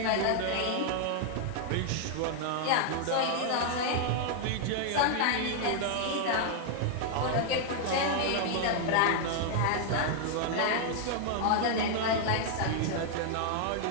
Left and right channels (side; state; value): both; different; correlation 0.00